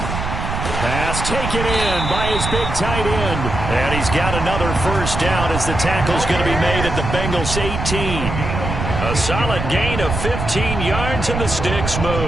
Pass taken in by his big tight end. And he's got another first down as the tackle's going to be made at the Bengals 18. A solid gain of 15 yards, and the sticks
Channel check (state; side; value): noise; right; rumble, 4 dB below the sound